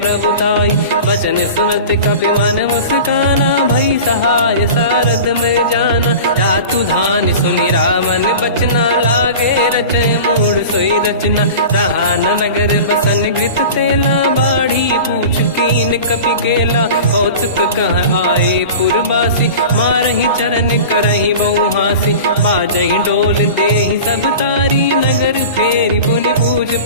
बचन सुनत कपि मन मुस्काना, भई सहाय सारद में जाना। जातु धान सुनि रामन बचना, लागे रचे मूड सोई रचना। रहा न नगर बसन गृत तेला, बाढ़ी पूछ कीन कपि केला। कौतुक कह आए पुरवासी, मारहि चरण करहि बहु हासी। बाजहि डोल देहि सब तारी, नगर फेरी पुनि पूज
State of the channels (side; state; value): both; inverted; correlation -0.36